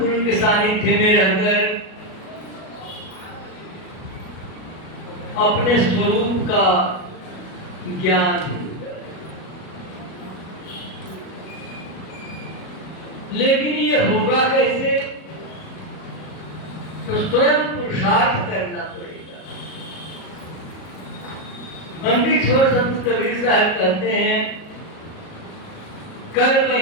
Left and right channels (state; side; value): late; right; 37 ms